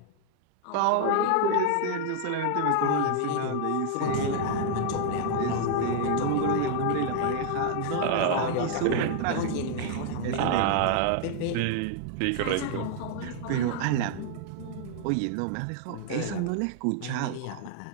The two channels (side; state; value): both; different; correlation 0.00